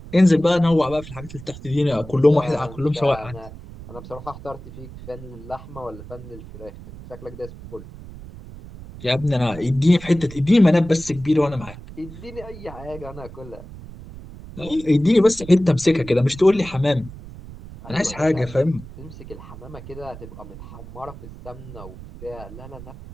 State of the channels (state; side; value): noise; right; rumble, 15 dB below the sound